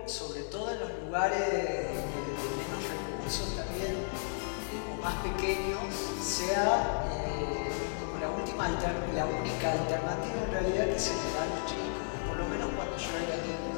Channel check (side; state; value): right; silent; digital silence